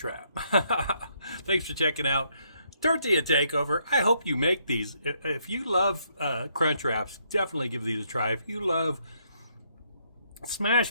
Thanks for checking out Tortilla Takeover. I hope you make these. If you love crunch wraps, definitely give these a try. If you love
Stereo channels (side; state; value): both; inverted; correlation -0.73